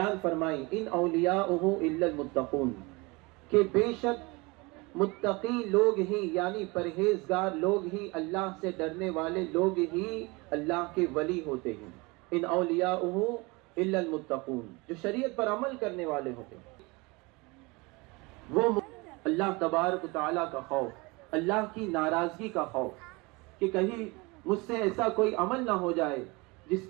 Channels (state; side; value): quieter; left; 25.6 dB